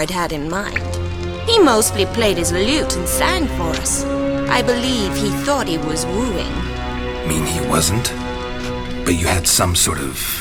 had in mind. He mostly played his lute and sang for us. I believe he thought he was wooing. Mean he wasn't? But you had some sort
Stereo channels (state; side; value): identical; both; correlation 1.00